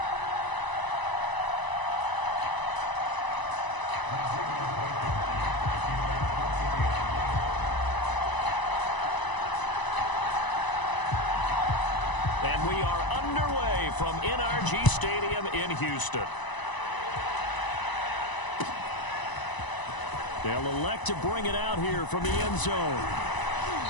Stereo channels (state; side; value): late; right; 1.0 ms